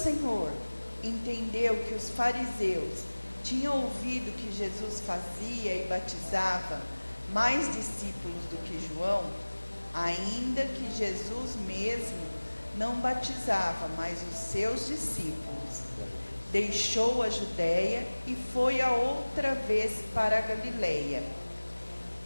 entendeu que os fariseus tinham ouvido que Jesus fazia e batizava mais discípulos do que João, ainda que Jesus mesmo não batizava, mas os seus discípulos, deixou a Judéia e foi a outra vez para a Galileia.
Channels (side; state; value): both; inverted; correlation -1.00